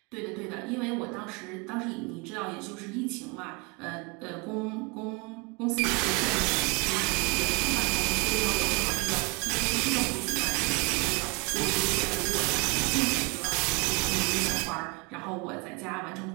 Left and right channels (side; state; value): left; quieter; 29.8 dB